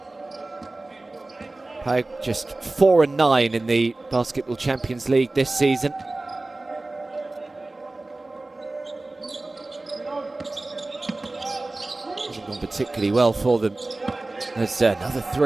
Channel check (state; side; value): quieter; left; 3.0 dB